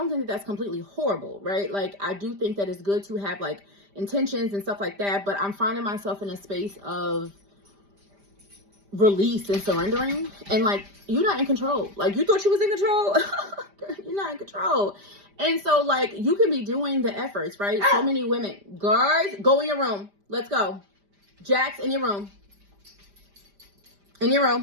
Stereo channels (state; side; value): late; left; 5.0 ms